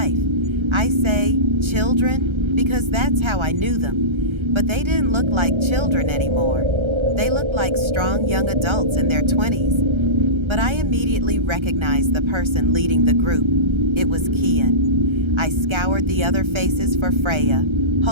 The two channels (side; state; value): left; late; 1.3 ms